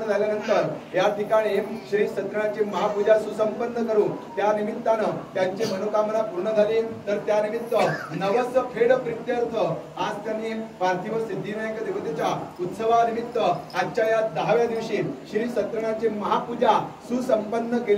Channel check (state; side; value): identical; both; correlation 1.00